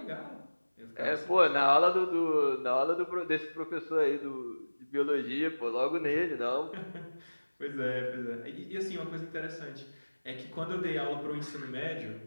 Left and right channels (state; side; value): inverted; both; correlation -1.00